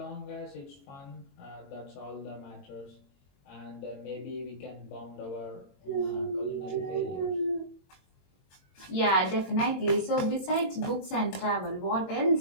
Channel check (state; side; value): late; right; 22 ms